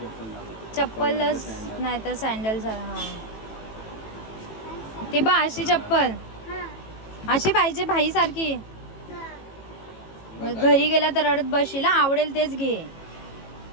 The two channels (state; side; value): late; right; 18 ms